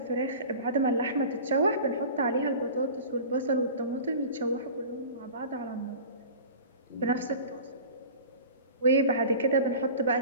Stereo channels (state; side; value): inverted; both; correlation -0.38